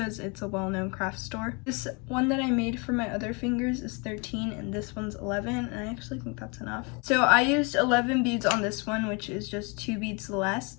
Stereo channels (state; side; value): quieter; right; 31.4 dB